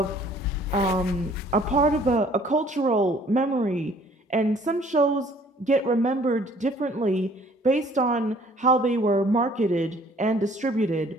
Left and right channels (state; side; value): normal; both; correlation 0.56